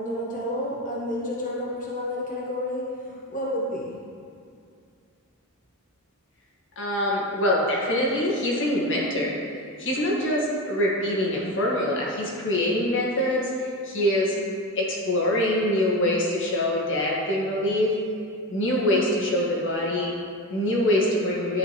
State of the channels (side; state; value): both; normal; correlation 0.21